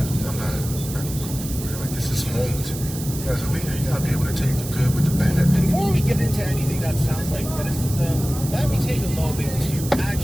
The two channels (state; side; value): noise; right; hiss, 11 dB below the sound